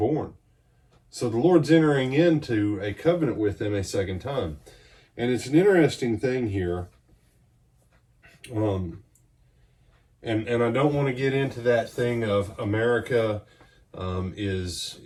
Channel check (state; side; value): identical; both; correlation 1.00